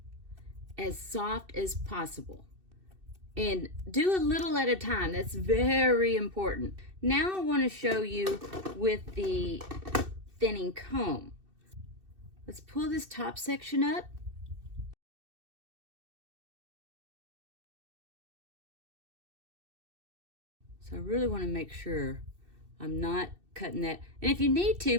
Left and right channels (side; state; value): left; late; 2.6 ms